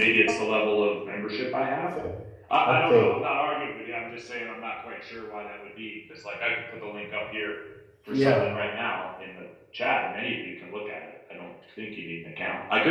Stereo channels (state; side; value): identical; both; correlation 1.00